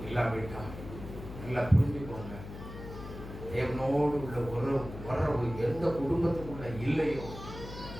இல்லாவிட்டால் நல்லா புரிஞ்சுக்கோங்க. தேவனோடு உள்ள உறவு எந்த குடும்பத்துக்குள்ள இல்லையோ,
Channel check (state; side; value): noise; left; hum, 11 dB below the sound